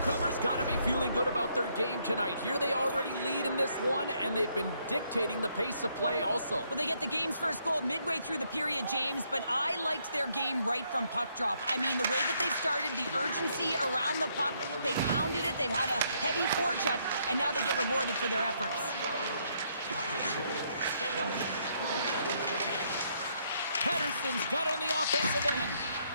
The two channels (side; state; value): both; inverted; correlation -0.72